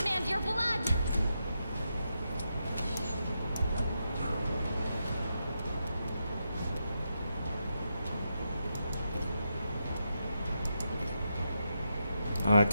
your blood. I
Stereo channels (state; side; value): inverted; both; correlation -0.85